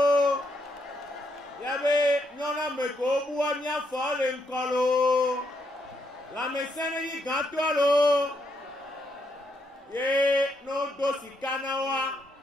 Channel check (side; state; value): both; normal; correlation 0.77